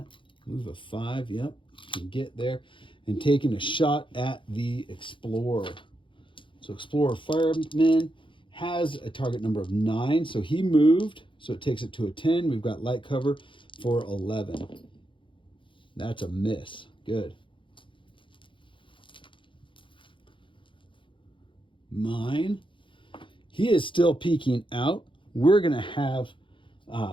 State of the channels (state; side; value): late; right; 0.24 ms